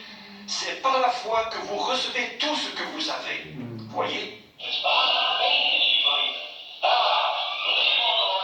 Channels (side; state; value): both; identical; correlation 1.00